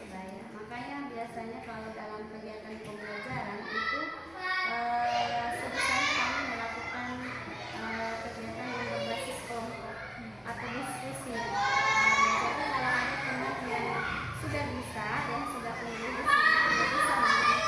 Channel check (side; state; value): left; noise; rumble, 30 dB below the sound